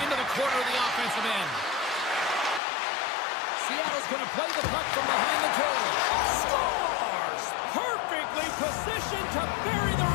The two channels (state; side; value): drops out; right; at 2.6 s